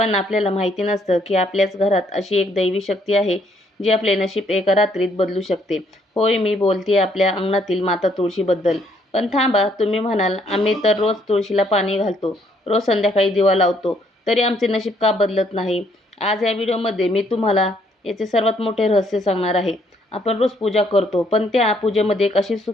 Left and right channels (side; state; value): both; normal; correlation 0.68